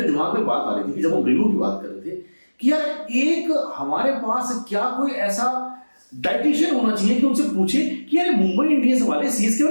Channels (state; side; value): inverted; both; correlation -1.00